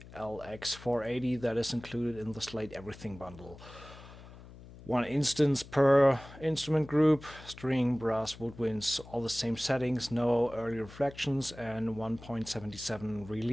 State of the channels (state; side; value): noise; left; hum, 18 dB below the sound